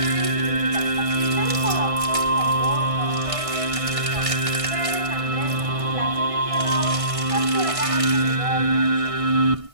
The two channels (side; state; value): left; late; 1.6 ms